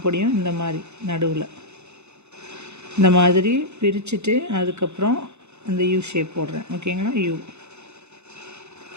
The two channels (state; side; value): late; left; 0.81 ms